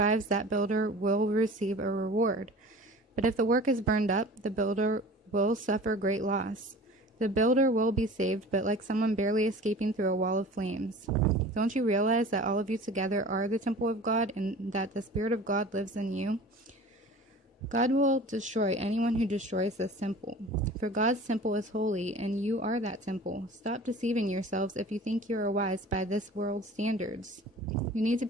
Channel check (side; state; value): both; normal; correlation 0.41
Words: that builder will receive a reward. But if the work is burned up, the builder will suffer great loss. The builder will be saved, but like someone barely escaping through a wall of flames. Don't you realize that all of you together are the temple of God, and that the Spirit of God lives in you? God will destroy anyone who destroys this temple. For God's temple is holy, and you are that temple. Stop deceiving yourselves if you think you are wise by this world's standards. You need to